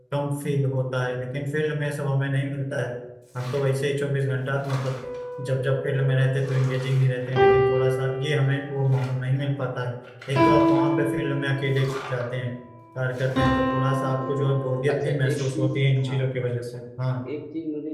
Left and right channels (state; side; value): identical; both; correlation 1.00